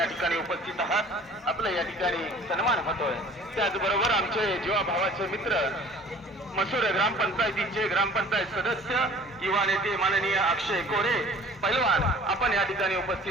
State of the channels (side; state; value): both; normal; correlation 0.49